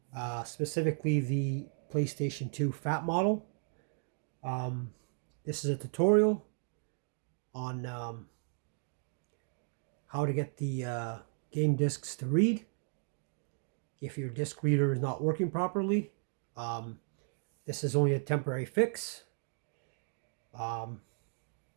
specifically the PlayStation 2 Fat model. Um, this is a tutorial on how to get the game discs to read if your disc reader is not working properly. Um, this is only a temporary fix. Um,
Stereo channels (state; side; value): silent; left; digital silence